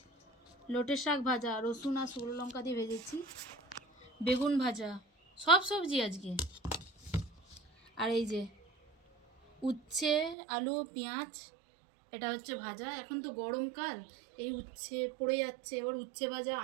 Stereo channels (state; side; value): drops out; left; at 10.4 s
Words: লোটের শাক ভাজা, রসুন আর শুকনো লঙ্কা দিয়ে ভেজেছি, বেগুন ভাজা, সব সবজি আজকে। আর এই যে উচ্ছে, আলু, পেঁয়াজ, এটা হচ্ছে ভাজা। এখন তো গরমকাল, এই উচ্ছে পড়ে যাচ্ছে, এবার উচ্ছে ভাজা,